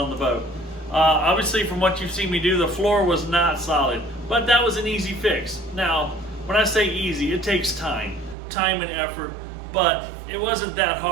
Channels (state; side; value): drops out; left; at 8.3 s